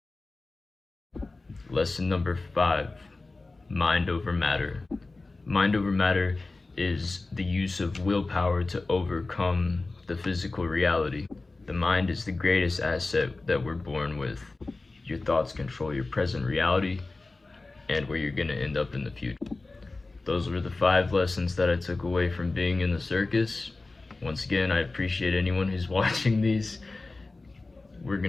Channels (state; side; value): quieter; right; 3.4 dB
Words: Lesson number 5, mind over matter. Mind over matter is the use of willpower to overcome the physical reality. The mind is the greatest asset that we're born with. Your thoughts control your present reality and where you're gonna end up in the future. Those were the 5 lessons that I took away from being in the circus. Once again, I appreciate anyone who's watching these. We're